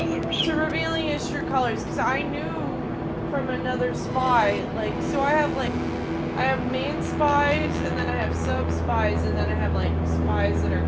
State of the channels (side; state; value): both; identical; correlation 1.00